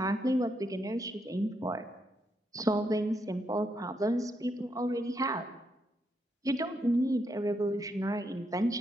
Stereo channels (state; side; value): normal; both; correlation 0.79